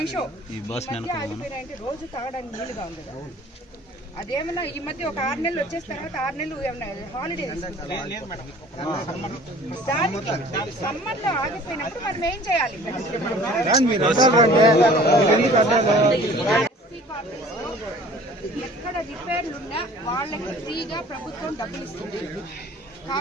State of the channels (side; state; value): both; normal; correlation 0.49